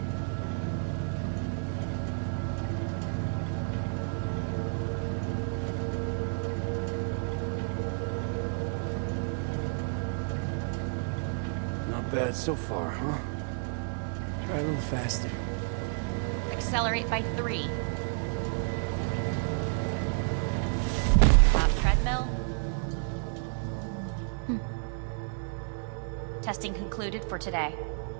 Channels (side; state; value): left; silent; 57 dB below the other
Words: Not bad so far, huh? Try a little faster. Accelerate by 3. Treadmill. Testing concluded for today.